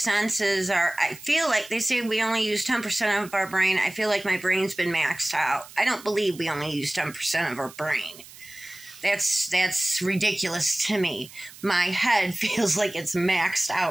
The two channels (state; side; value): noise; right; hiss, 19 dB below the sound